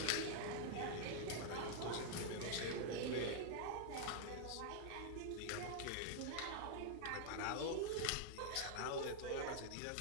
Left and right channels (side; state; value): both; different; correlation -0.01